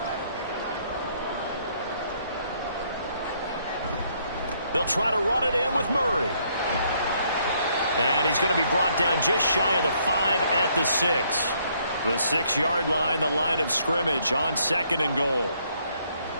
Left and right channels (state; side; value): inverted; both; correlation -0.69